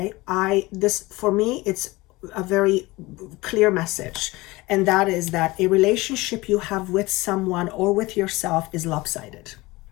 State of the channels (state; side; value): quieter; right; 21.3 dB